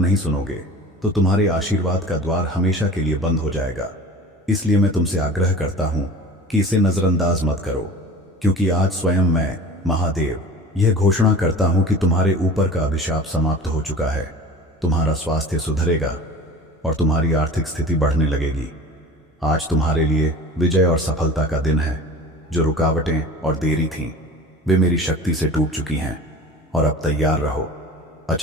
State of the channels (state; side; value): normal; both; correlation 0.38